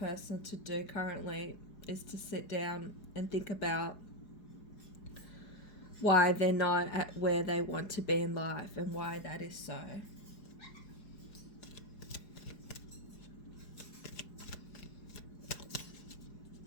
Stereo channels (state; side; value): late; right; 4.8 ms